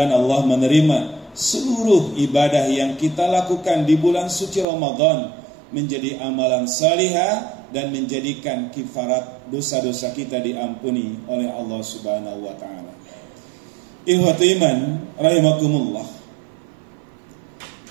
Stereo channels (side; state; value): left; drops out; at 4.7 s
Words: Allah menerima seluruh ibadah yang kita lakukan di bulan suci Ramadan menjadi amalan salihah dan menjadikan kifarat dosa-dosa kita diampuni oleh Allah Subhanahu wa taala. Ikhwatu iman rahimakumullah.